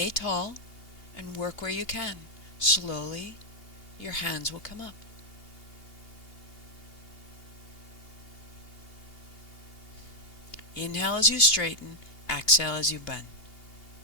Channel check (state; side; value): late; right; 2.8 ms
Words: tall, and work where you can. Slowly, your hands will come up. Inhale as you straighten, exhale as you bend.